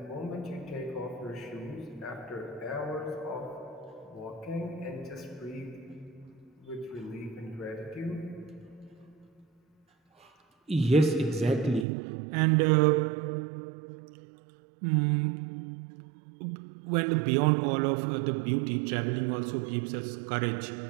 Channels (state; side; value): drops out; left; at 11.9 s